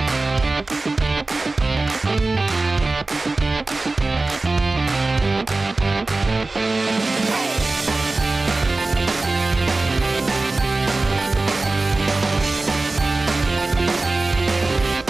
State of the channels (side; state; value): left; quieter; 3.3 dB